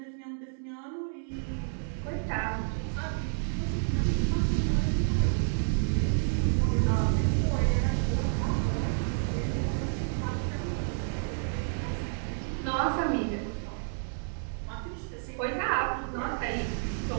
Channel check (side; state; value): left; silent; digital silence